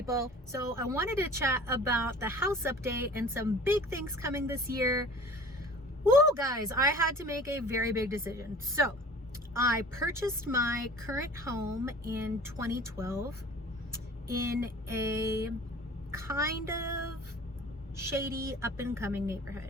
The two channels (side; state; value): both; normal; correlation 0.45